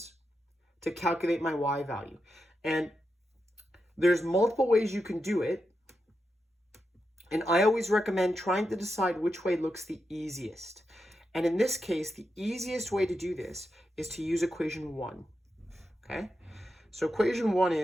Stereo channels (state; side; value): normal; both; correlation 0.87